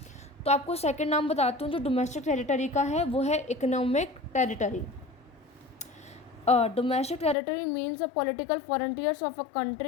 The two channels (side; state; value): right; drops out; at 7.4 s